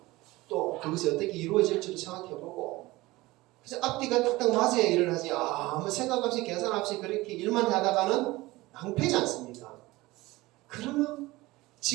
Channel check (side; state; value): left; quieter; 20.0 dB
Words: 또 그것이 어떻게 이루어질지도 생각해보고 그래서 앞뒤가 딱딱 맞아야 일을 하지 아무 생각 없이 계산 없이 그렇게 일만 하다가는 낭패지 않습니까? 그러나